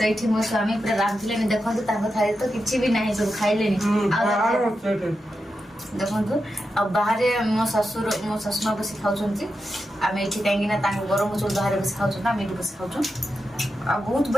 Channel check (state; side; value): normal; both; correlation 0.88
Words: ये मो स्वामी पूरा रांधे देखो थाली तो किसी भी ना सब खाइले देखो आ बाहर मो शाशुमा बस खाऊँ आम ये कहीं गरम चूल बाहर बस खाऊँ आम ये बस खाऊँ आ बहुत